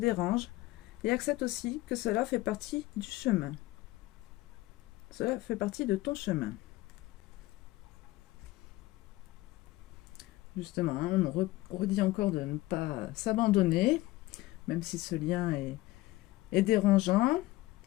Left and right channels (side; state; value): right; quieter; 18.5 dB